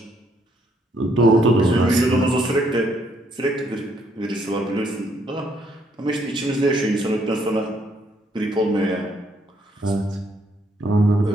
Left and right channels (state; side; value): normal; both; correlation 0.70